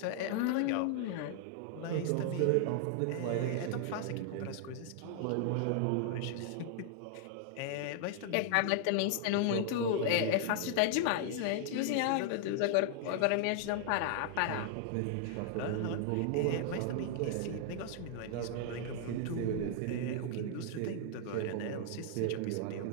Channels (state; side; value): different; both; correlation 0.00